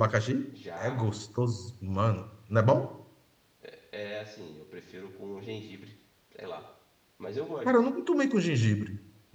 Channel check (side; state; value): both; identical; correlation 1.00